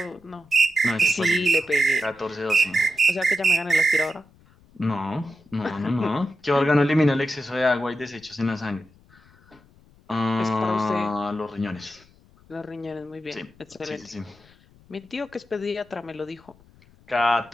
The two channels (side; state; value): left; noise; rumble, 29 dB below the sound